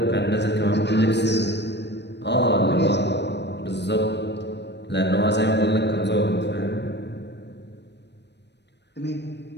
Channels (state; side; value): late; right; 0.50 ms